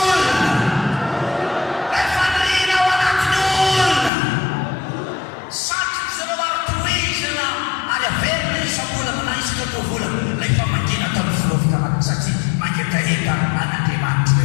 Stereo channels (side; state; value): right; drops out; at 4.1 s